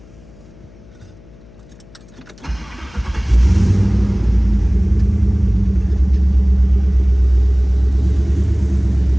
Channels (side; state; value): left; noise; hum, 24 dB below the sound